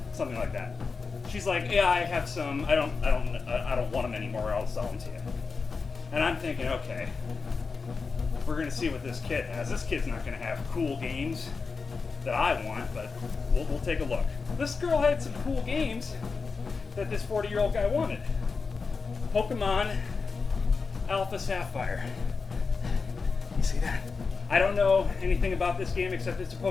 something like that. She's like, yeah, I have some, I don't want them anymore, I'll sell them to you. And I'm thinking, okay, we're gonna see what this kid has. This kid's not gonna have cool games. that I want, but we'll take a look. This girl had some cool games that this 40-year-old guy wanted. Pokemon Alpha Sapphire. You see that? I don't know anything about this game except it's a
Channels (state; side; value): quieter; right; 4.7 dB